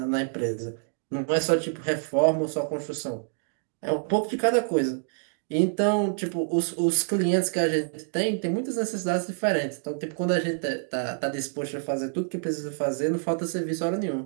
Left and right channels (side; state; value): left; silent; digital silence